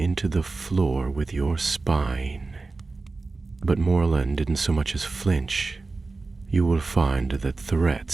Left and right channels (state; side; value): quieter; left; 3.7 dB